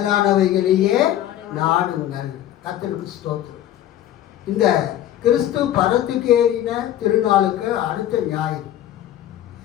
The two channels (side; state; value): right; quieter; 12.3 dB